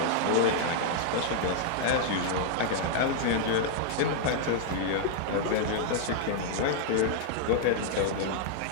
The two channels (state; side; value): different; both; correlation -0.01